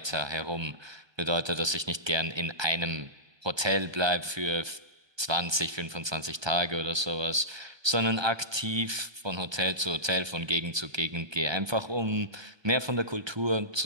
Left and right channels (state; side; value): late; left; 1.2 ms